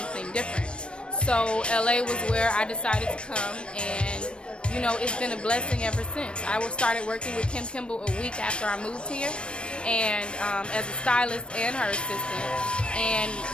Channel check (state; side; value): late; right; 0.057 ms